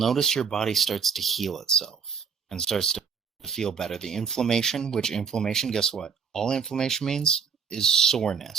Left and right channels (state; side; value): quieter; left; 6.3 dB